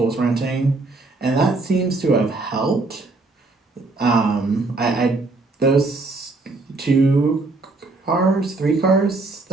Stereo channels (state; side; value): quieter; left; 3.4 dB